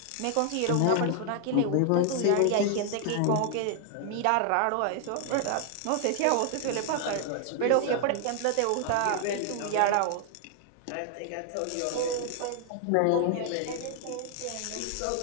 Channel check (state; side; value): different; both; correlation 0.00